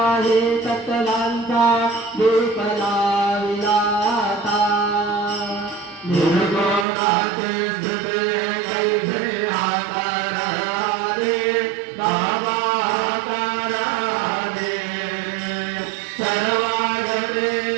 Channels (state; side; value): drops out; left; at 6.9 s